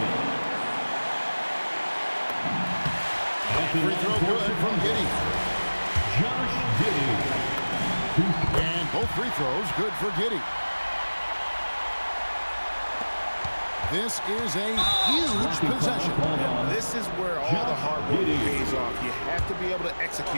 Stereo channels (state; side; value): inverted; both; correlation -1.00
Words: Free throw good from Giddey. Josh Giddey. And both free throws good for Giddey. This is a huge possession. And this is where all the hard work pays off. You have to be able to